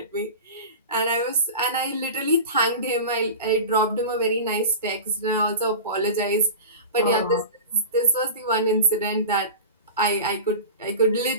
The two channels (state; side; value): inverted; both; correlation -0.32